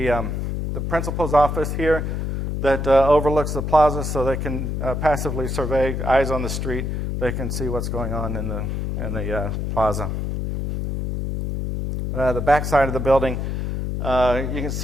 the principal's office here that overlooks the plaza, so they can passively survey, eyes on the street. They can see what's going on in the plaza. The back side of the building, you can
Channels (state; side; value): noise; left; hum, 2 dB below the sound